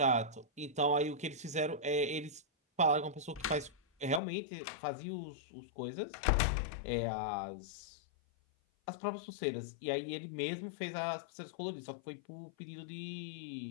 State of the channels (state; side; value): drops out; right; at 4.2 s